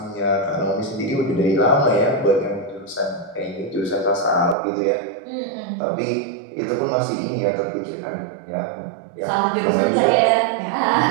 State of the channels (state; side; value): drops out; left; at 4.5 s